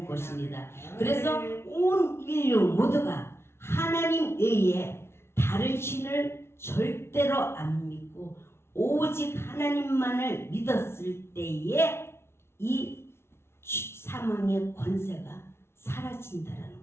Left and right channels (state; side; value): late; right; 0.12 ms